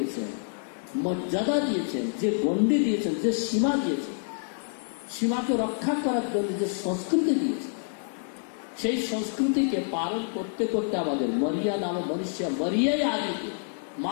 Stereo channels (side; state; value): right; silent; digital silence